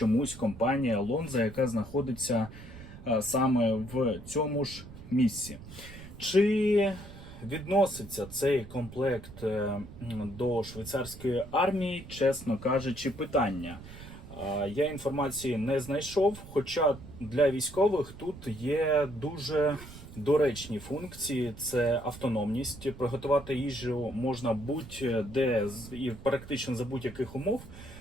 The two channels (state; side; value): noise; right; rumble, 15 dB below the sound